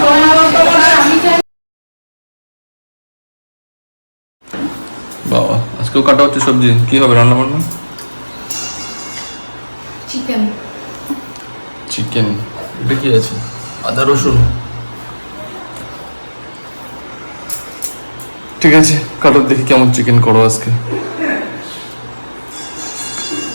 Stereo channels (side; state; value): both; inverted; correlation -1.00